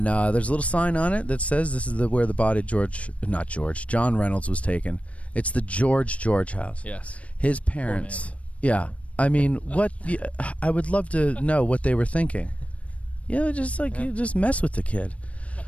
there's a little sign on it that says this is where the body John Reynolds was taken. It's the George House. Yes. His parents. Yeah. I mean, I would love to know what they were thinking. Just mess with the kid.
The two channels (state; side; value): late; right; 0.065 ms